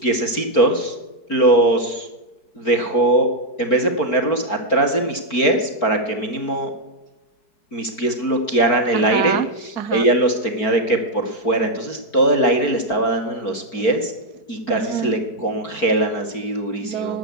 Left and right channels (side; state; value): right; late; 4.4 ms